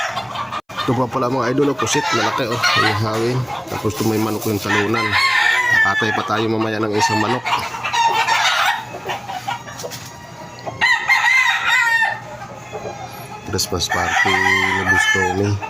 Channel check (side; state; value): both; identical; correlation 1.00